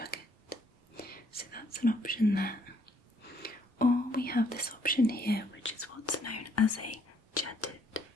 So that's an option there. Or we have this option here, which is what's known as a jetted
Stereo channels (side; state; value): both; normal; correlation 0.67